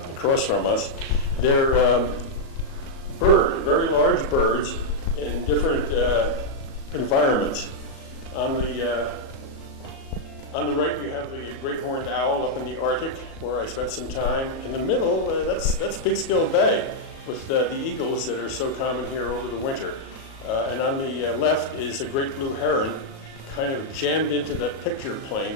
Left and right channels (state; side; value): late; right; 37 ms